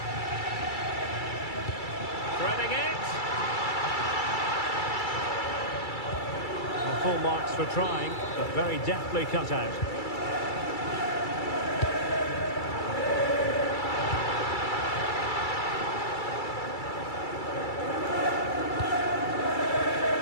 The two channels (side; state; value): right; late; 2.3 ms